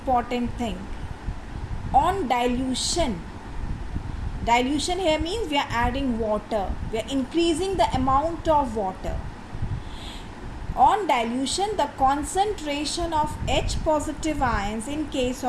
thing, on dilution here means we are adding water, we are increasing the amount of water. On dilution, the concentration of H positive ions in case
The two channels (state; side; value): identical; both; correlation 1.00